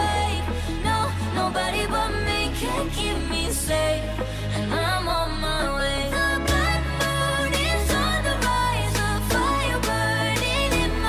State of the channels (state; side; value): identical; both; correlation 1.00